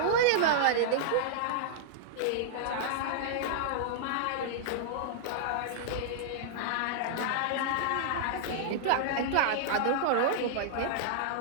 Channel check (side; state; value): both; different; correlation -0.01